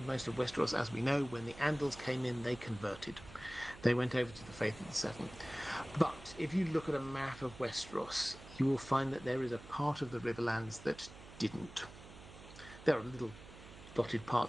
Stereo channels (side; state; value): right; noise; hum, 17 dB below the sound